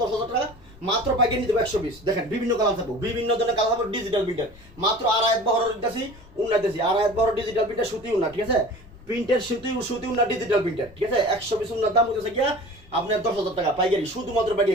10,000 টাকা, মাত্র পাইকারি নিতে 120। দেখেন বিভিন্ন কালার থাকবো, বিভিন্ন ধরনের কালার থাকবো, ডিজিটাল প্রিন্টার মাত্র আড়াইত বহরের দিতেছি, উন্না দিতেছি, আড়াইত বহরের ডিজিটাল প্রিন্টার সুতি উন্না, ঠিক আছে? প্রিন্টের সুতি উন্না ডিজিটাল প্রিন্টার, ঠিক আছে? 120 উন্নার দাম হচ্ছে গিয়া আপনার 10,000 টাকা পাইকারি, শুধুমাত্র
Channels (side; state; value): left; noise; rumble, 23 dB below the sound